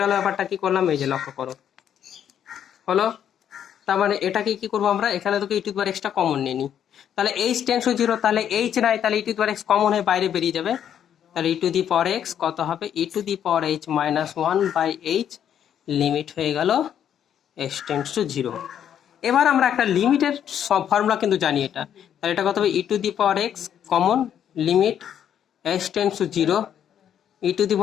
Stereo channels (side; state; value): right; quieter; 9.5 dB